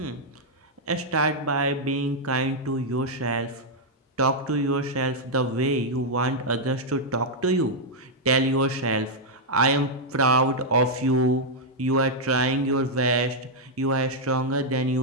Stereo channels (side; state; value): both; normal; correlation -0.03